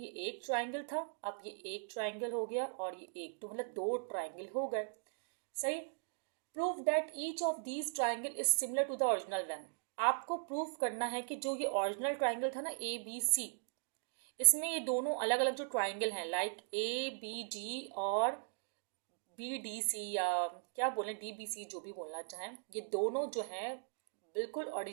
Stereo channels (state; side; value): silent; left; digital silence